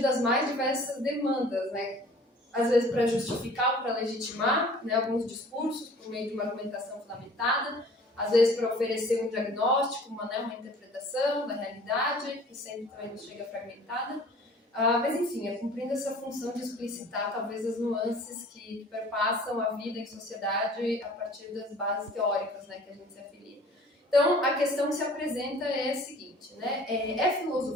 das mais diversas demandas, né, às vezes para justificar ou para legitimar, né, alguns discursos por meio de uma argumentação fundamentada, às vezes para oferecer um diagnóstico, uma interpretação da realidade, que sempre também nos chega fragmentada, mas enfim, cumprindo essa função de explicitar talvez as nuances que perpassam a vida em sociedade a partir das bases teóricas, né, que a gente se afilia. Então, a questão que se apresenta é a seguinte, né, é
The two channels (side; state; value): both; normal; correlation 0.49